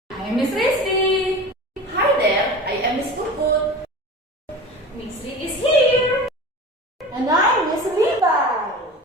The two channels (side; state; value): both; normal; correlation 0.34